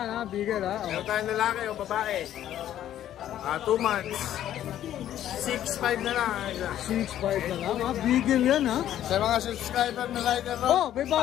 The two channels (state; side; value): quieter; right; 11.7 dB